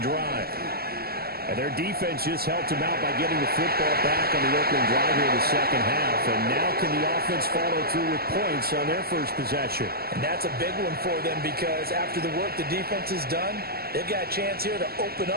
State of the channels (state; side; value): late; left; 0.45 ms